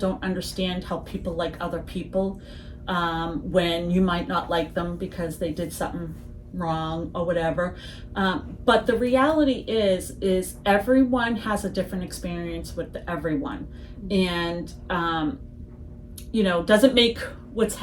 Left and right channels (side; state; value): both; identical; correlation 1.00